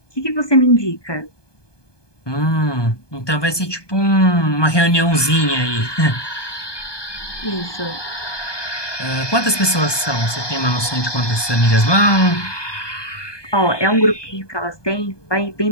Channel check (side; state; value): right; late; 1.2 ms